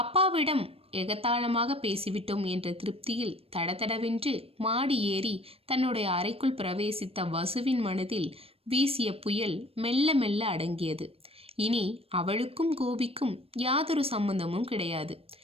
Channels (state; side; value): late; left; 0.28 ms